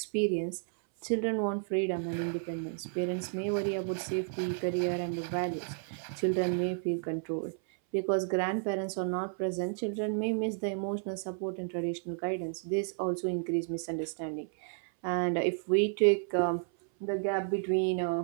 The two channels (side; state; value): left; silent; 56 dB below the other